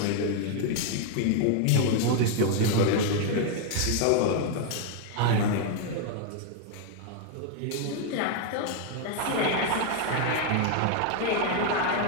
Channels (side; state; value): both; different; correlation 0.00